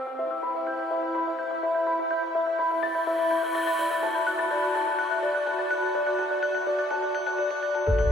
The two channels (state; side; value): normal; both; correlation 0.66